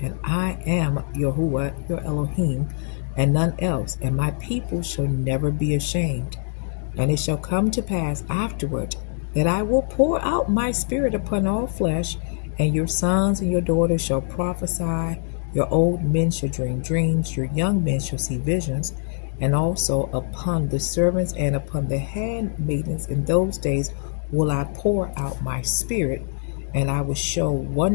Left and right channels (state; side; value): silent; right; digital silence